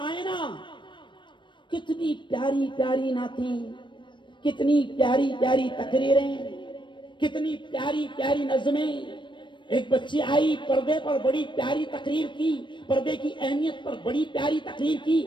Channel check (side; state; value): right; late; 0.23 ms